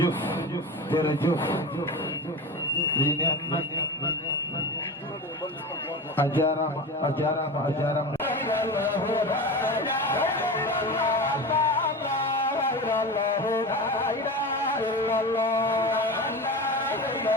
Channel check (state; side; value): normal; both; correlation 0.27